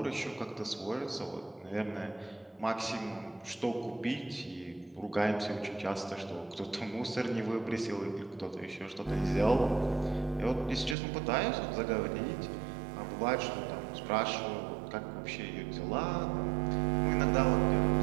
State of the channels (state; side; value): drops out; left; at 11.0 s